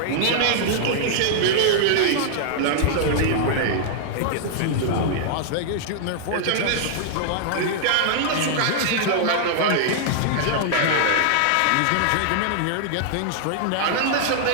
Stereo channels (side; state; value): both; different; correlation -0.01